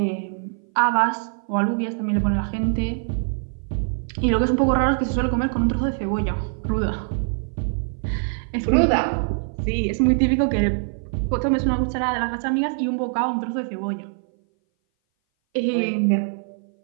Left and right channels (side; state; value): left; silent; 59 dB below the other